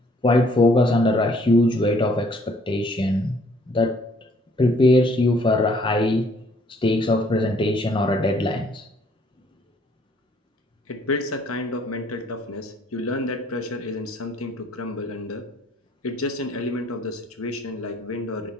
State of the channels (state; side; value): normal; both; correlation 0.62